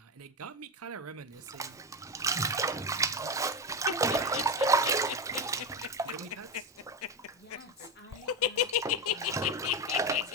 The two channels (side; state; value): both; normal; correlation 0.15